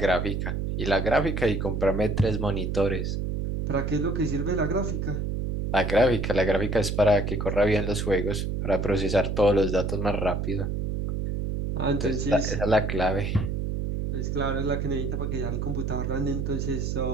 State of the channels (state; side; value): noise; right; hum, 1 dB below the sound